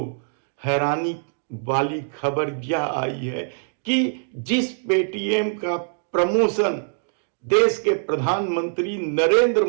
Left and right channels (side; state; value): left; silent; 63 dB below the other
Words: हैरानी वाली खबर यह आई है कि जिस पेटीएम का प्रमोशन देश के प्रधानमंत्री नरेंद्र